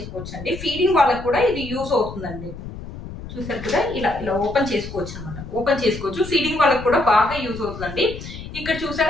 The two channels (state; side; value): noise; left; rumble, 11 dB below the sound